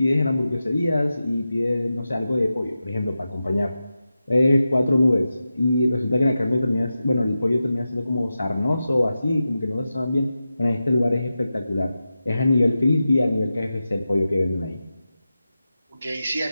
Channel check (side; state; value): both; inverted; correlation -0.92